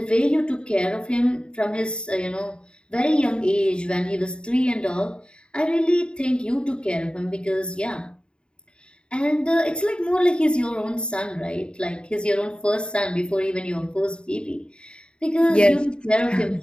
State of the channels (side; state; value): right; late; 0.052 ms